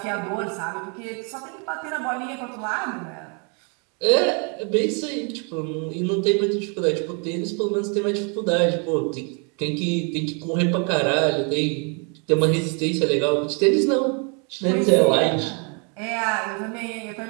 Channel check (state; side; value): quieter; left; 36.9 dB